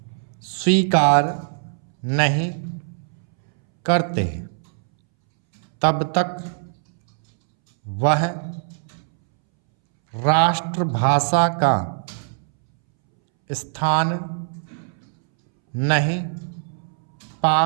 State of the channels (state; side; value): silent; left; 64 dB below the other